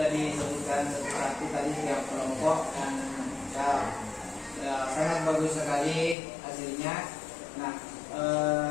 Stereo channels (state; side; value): drops out; right; at 6.2 s